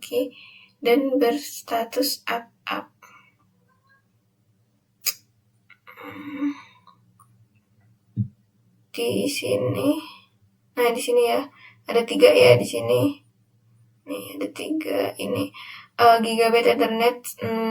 dan berstatus up? Di sini, nah di sini ya ada 3 ya di sini. Nih ada 3 ini. Gigabyte Ethernet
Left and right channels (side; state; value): both; identical; correlation 1.00